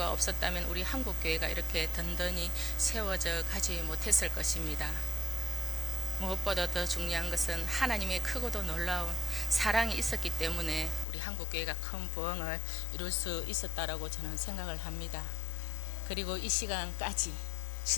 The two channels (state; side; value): drops out; right; at 11.1 s